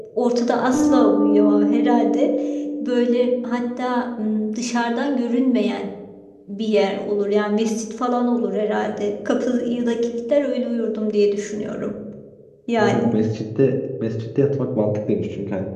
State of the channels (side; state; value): both; identical; correlation 1.00